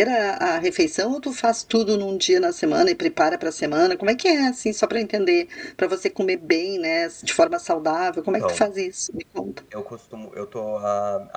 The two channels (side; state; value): both; identical; correlation 1.00